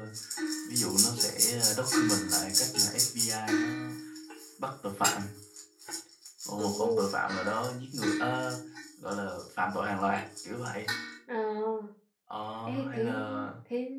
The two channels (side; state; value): both; identical; correlation 1.00